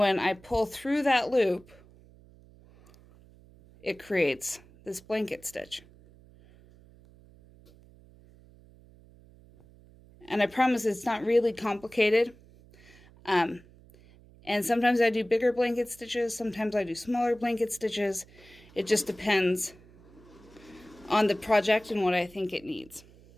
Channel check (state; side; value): noise; right; hum, 25 dB below the sound